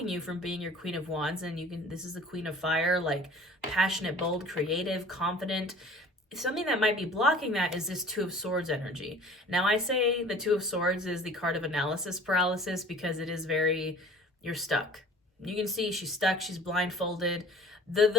you from being your Queen of Wands, and this is the Queen of Fire, like passionate, bold, creative, confident. Something that might be blocking that is this Two of Swords energy. Now, I say the Two of Swords is the card of analysis paralysis because it is very, you're stuck. You can see she's stuck, she's blindfolded.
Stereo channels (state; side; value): normal; both; correlation 0.47